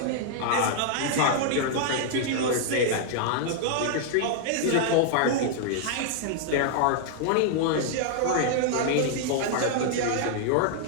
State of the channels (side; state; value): both; different; correlation -0.01